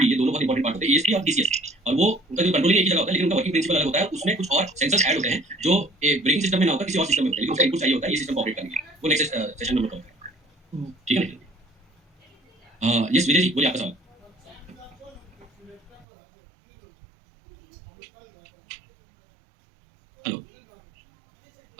ये दोनों बहुत इंपॉर्टेंट पार्ट होते हैं, ईएसपी और टीसीएस, और वो उनका जो कंट्रोलिंग एक ही जगह होता है, लेकिन उनका वर्किंग प्रिंसिपल अलग होता है, उसमें कुछ और सेंसर्स ऐड होते हैं जो ब्रेकिंग सिस्टम में ना होता, किसी और सिस्टम में होता है, लेकिन उसका इनपुट चाहिए होता है ये सिस्टम को ऑपरेट करने के लिए। वो नेक्स्ट सेशन में बताऊंगा, ठीक है ना। यस विजय जी बोलिए आपका सवाल। हेलो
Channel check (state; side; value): drops out; left; at 16.1 s